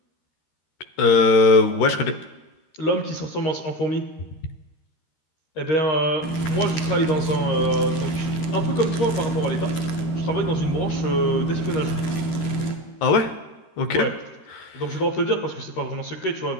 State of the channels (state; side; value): late; right; 13 ms